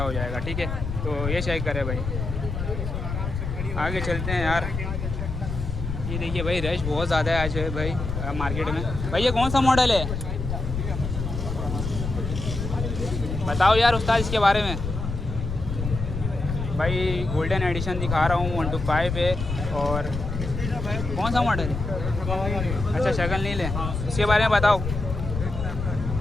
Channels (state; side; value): noise; left; rumble, 5 dB below the sound